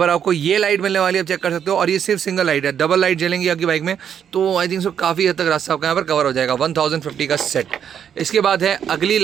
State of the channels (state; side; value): quieter; left; 8.5 dB